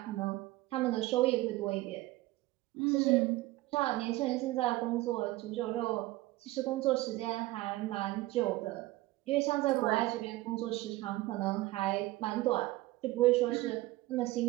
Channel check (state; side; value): quieter; left; 18.1 dB